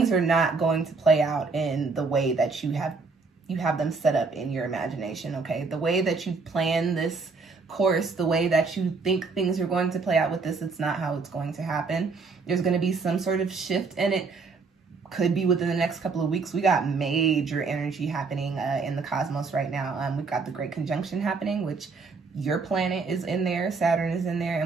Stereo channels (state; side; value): quieter; left; 4.4 dB